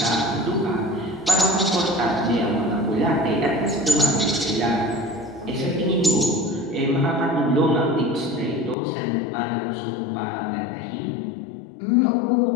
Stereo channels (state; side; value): drops out; right; at 8.8 s